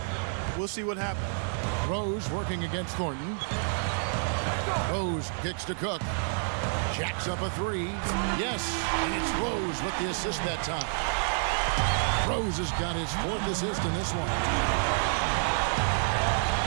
we'll see what happens. Rose working against Thornton. Rose kicks to Cook. Jacks up a three. Yes, and it's Rose with the assist that time. Rose has got his 4th assist in this one.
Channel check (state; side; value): silent; left; 59 dB below the other